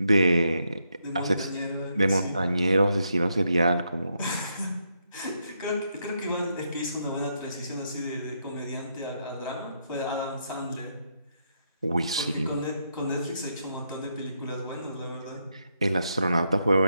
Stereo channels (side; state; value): both; inverted; correlation -0.79